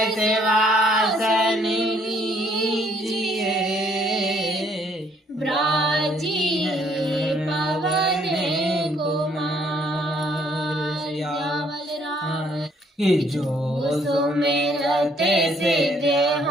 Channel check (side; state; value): both; normal; correlation 0.65